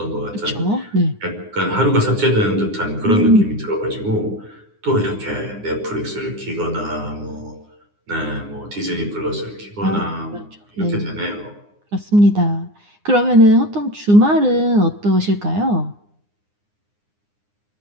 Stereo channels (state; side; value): late; left; 9.7 ms